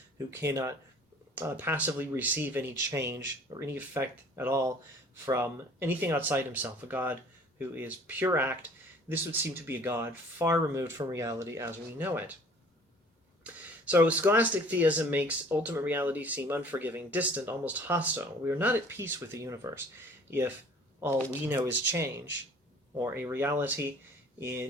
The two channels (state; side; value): normal; both; correlation 0.51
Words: who cannot passively receive any change or any effect at all from anything outside himself, a God who is pure act, this would seem to be a God far removed from reality as we know it. So scholastic theism makes ultimate reality seem unforgiving, distant, almost hostile. We are not at peace with the universe if all we know is change, or a reality